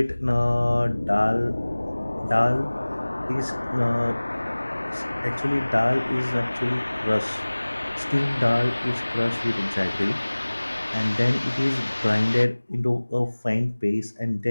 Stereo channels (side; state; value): both; inverted; correlation -1.00